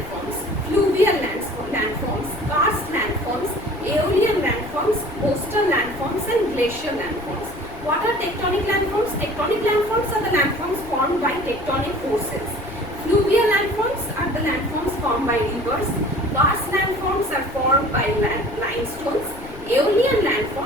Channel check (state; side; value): noise; left; rumble, 16 dB below the sound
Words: fluvial landforms, karst landforms, aeolian landforms, coastal landforms, and glacial landforms. What are tectonic landforms? Tectonic landforms are the landforms formed by tectonic forces. Fluvial landforms are the landforms formed by rivers. Karst landforms are formed by limestones. Aeolian